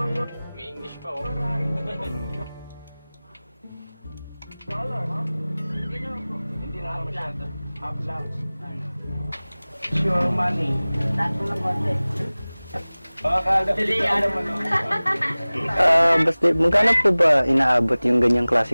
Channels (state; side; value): inverted; both; correlation -0.99